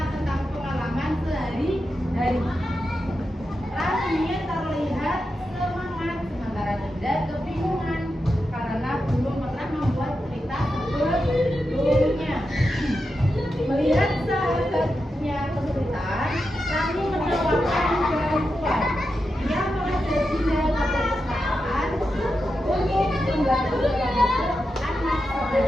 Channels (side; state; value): both; normal; correlation 0.88